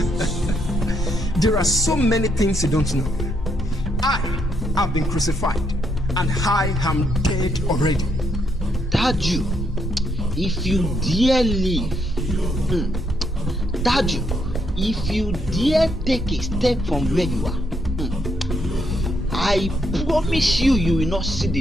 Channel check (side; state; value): both; normal; correlation 0.75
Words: There are so many things you don't know. I have been crucified and I am dead already. Taju, if you dare leave, Taju, if you dare take a step from where you are, I promise you, you will not see